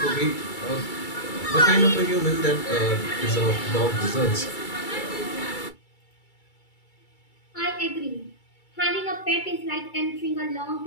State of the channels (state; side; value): late; right; 2.3 ms